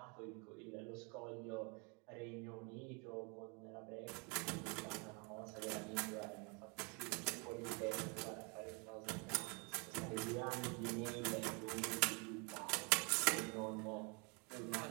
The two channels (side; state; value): left; quieter; 33.1 dB